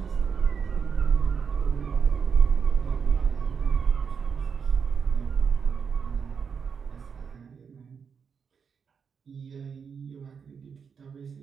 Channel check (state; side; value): quieter; left; 6.3 dB